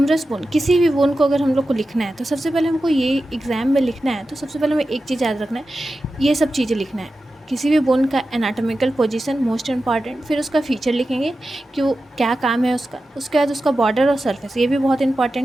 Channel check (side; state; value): both; normal; correlation 0.93